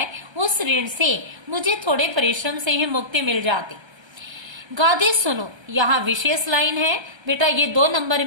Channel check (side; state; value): left; late; 1.3 ms